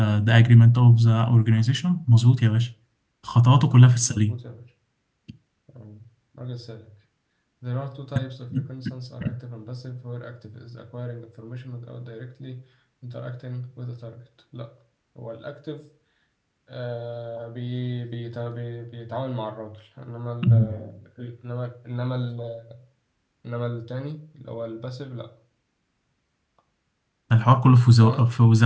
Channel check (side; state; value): both; identical; correlation 1.00